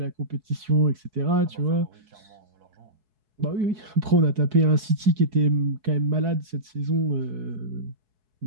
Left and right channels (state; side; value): late; left; 4.7 ms